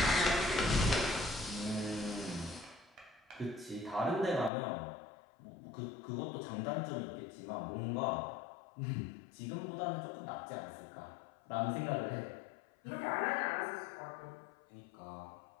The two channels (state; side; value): drops out; right; at 4.5 s